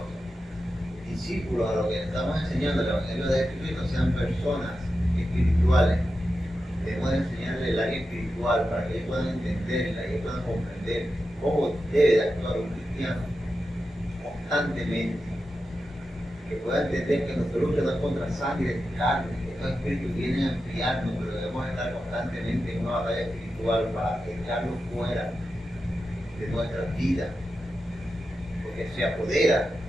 discípulos, a los que estamos enseñando el Evangelio de Jesucristo, sean personas espirituales. Debemos de enseñarles el área espiritual para que ellos puedan entenderla y ellos puedan comprender cómo debe de actuar un cristiano constantemente. Que pueda entender que nuestra lucha no es contra sangre y carne, que estos espíritus vienen a enfriarnos, pero debemos estar constantemente en una batalla espiritual para echarlos fuera de nuestras vidas, porque se apodera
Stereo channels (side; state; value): both; normal; correlation 0.90